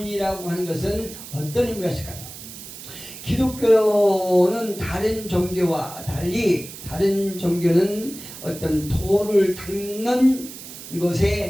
하는 것은 어떤 의미가 있을까요? 기독교는 다른 종교와 달리 다른 종교는 어떤 도를 닦는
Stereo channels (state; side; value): noise; right; hiss, 13 dB below the sound